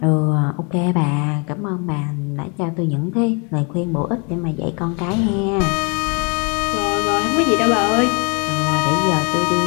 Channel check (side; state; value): right; quieter; 34.0 dB